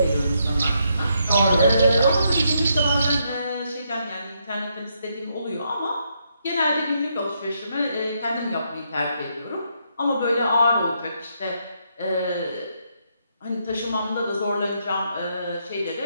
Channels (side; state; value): both; inverted; correlation -0.77